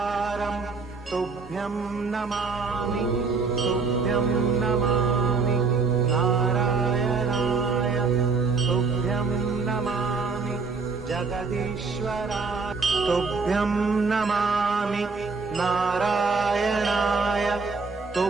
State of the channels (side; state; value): left; quieter; 4.4 dB